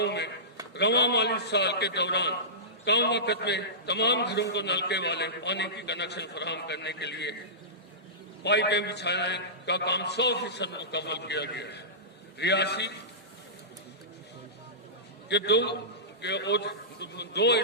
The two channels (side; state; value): both; normal; correlation -0.19